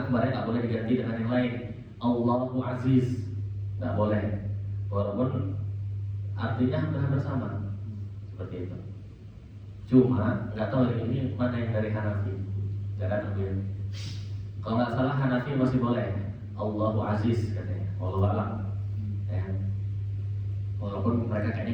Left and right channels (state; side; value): identical; both; correlation 1.00